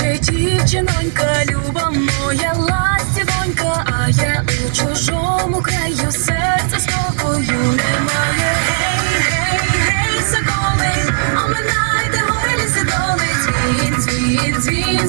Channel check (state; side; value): silent; left; 69 dB below the other